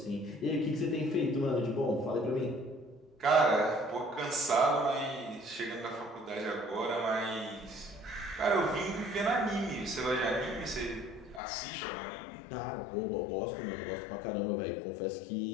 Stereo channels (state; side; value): drops out; right; at 11.4 s